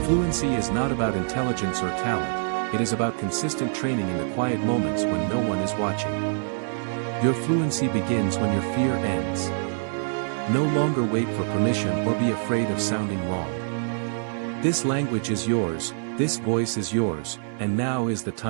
Fluency is not about intelligence or talent, it is about consistent training in the quiet moments when no one is watching. Your fluency begins when your fear ends. No longer wait for permission or be afraid of sounding wrong. This language is yours, this voice is yours, and now is the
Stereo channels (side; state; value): left; silent; 61 dB below the other